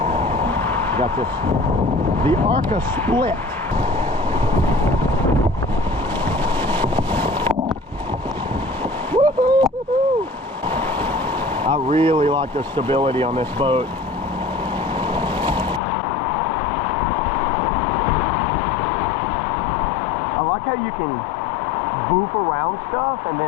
Got this, the Arca split. I really like the stability on this boat. I like how you can boof around stuff and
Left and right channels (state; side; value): drops out; right; at 15.8 s